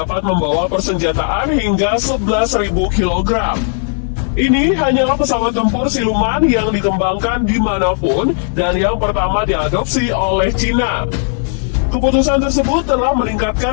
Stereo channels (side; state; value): right; silent; digital silence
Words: membawa persenjataan hingga 11.000 kg. Ini hanyalah pesawat tempur siluman yang dikembangkan dimanapun dan yang pertama diadopsi oleh Cina. Keputusan tersebut telah